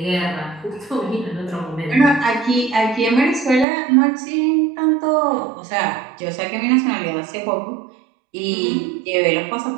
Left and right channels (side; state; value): left; drops out; at 3.7 s